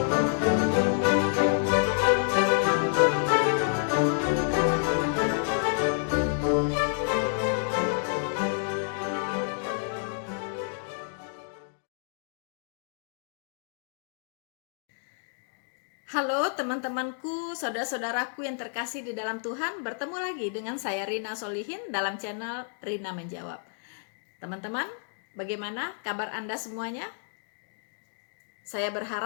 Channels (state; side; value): silent; right; digital silence